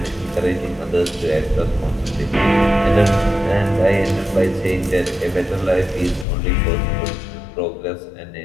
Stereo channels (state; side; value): drops out; right; at 6.2 s